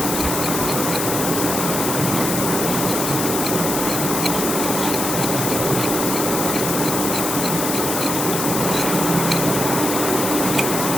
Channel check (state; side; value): noise; left; hiss, 2 dB below the sound